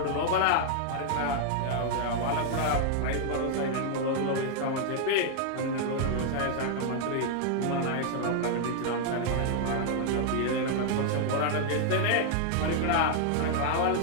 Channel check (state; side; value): different; both; correlation 0.00